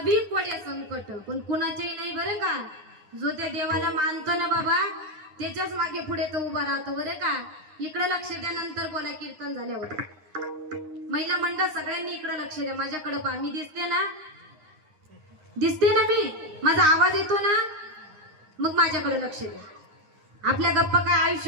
कोडे संकट, पण कुणाचेही नाही बरं का. जो त्या देवाला मानतो ना बाबा त्याच्याच मागे पुढे तो उभा राहतो बरं का. इकडे लक्ष द्या, नंतर बोला कीर्तन झाल्यावर. महिला मंडळ सगळ्यांनी इकडे लक्ष द्या. माझ्याकडे पहा, मी दिसते ना, दिसते ना मी, माझा आवाज येतो ना, मग माझ्याकडे लक्ष द्या. आपल्या गप्पा काय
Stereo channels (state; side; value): late; left; 9.7 ms